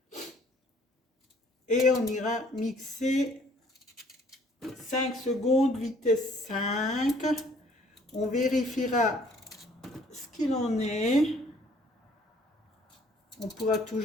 Et on ira mixer 5 secondes, vitesse 5. On vérifiera ce qu'il en est. On pourra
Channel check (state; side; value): normal; both; correlation 0.59